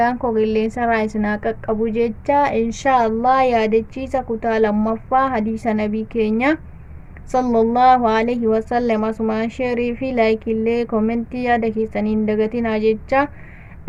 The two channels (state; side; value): identical; both; correlation 1.00